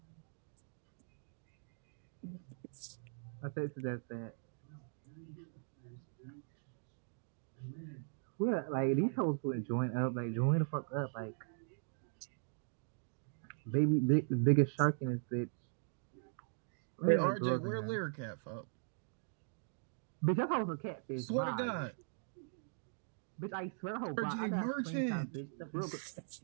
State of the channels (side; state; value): left; silent; digital silence